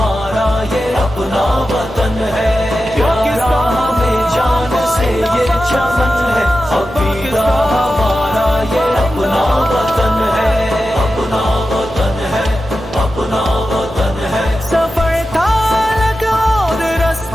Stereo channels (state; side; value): normal; both; correlation 0.92